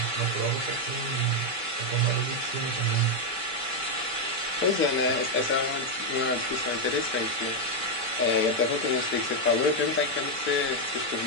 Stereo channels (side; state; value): left; late; 2.3 ms